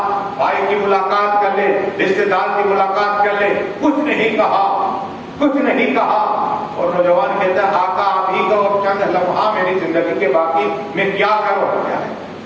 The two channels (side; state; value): both; identical; correlation 1.00